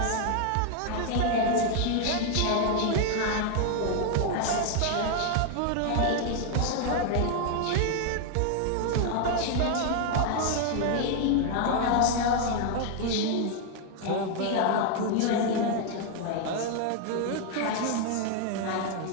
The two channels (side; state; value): both; different; correlation 0.00